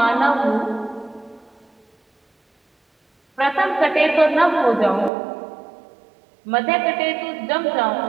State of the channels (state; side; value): drops out; left; at 5.1 s